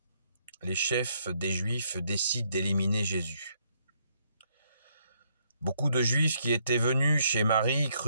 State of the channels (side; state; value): both; inverted; correlation -0.72